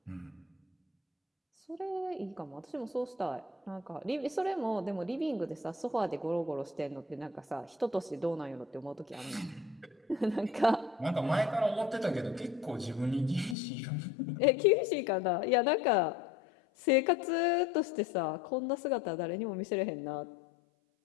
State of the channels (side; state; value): right; drops out; at 13.6 s